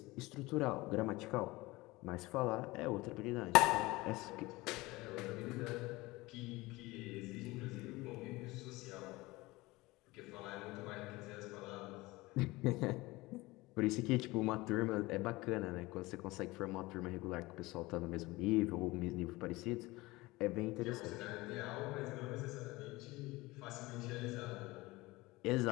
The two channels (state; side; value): quieter; right; 21.0 dB